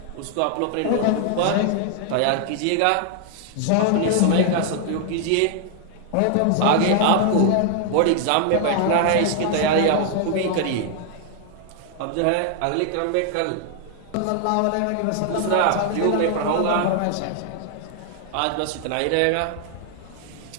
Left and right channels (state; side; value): different; both; correlation 0.00